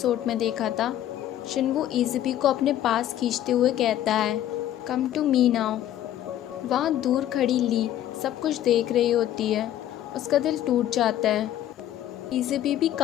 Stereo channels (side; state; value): right; quieter; 12.1 dB